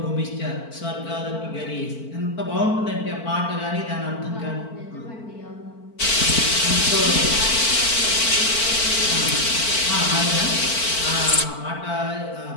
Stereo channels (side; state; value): right; late; 4.5 ms